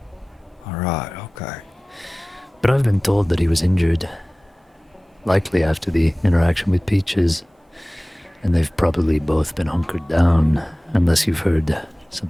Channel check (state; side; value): normal; both; correlation 0.98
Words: All right, okay. But I've been told that he was injured. Likely after the interaction with Peaches. And they've probably both been hunkered down, unless you've heard